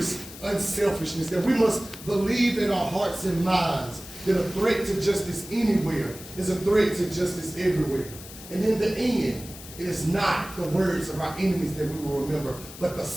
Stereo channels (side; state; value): left; noise; hiss, 15 dB below the sound